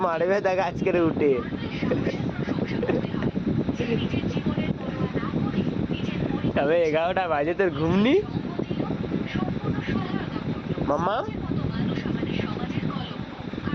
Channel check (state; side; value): identical; both; correlation 1.00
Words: মারবে দেখ আজকের উঠে। তবে 11টা বাজে তোর ঘুমনি মাম্মা,